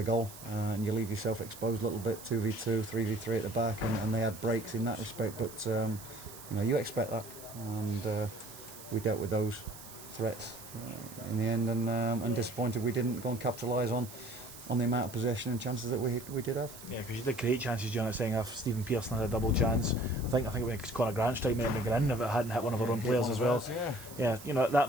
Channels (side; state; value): right; noise; hiss, 16 dB below the sound